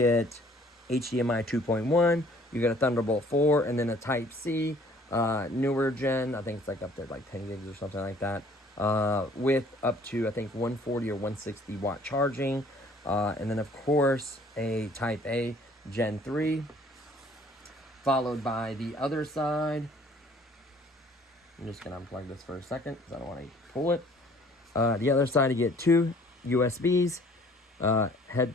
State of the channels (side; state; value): both; normal; correlation 0.56